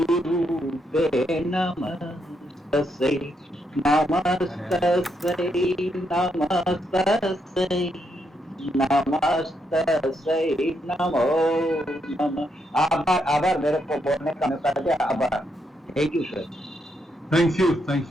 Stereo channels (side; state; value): both; normal; correlation 0.79